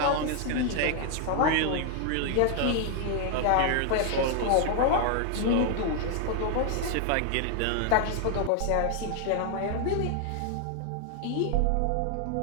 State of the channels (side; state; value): both; different; correlation 0.00